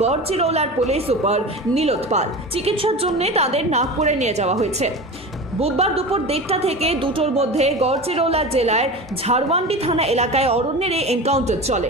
গড়চিরৌলার পুলিশ সুপার নীলোৎ পাল। চিকিৎসার জন্য তাদের নাগপুরে নিয়ে যাওয়া হয়েছে। বুধবার দুপুর 1:30 থেকে 2টোর মধ্যে গড়চিরৌলা জেলার ঝাড়ওয়ান্ডি থানা এলাকায় অরণ্যের এই এনকাউন্টার চলে।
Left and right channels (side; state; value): both; normal; correlation 0.30